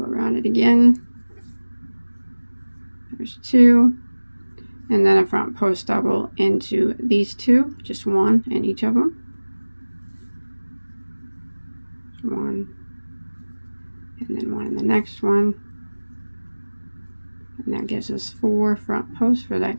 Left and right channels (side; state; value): both; inverted; correlation -1.00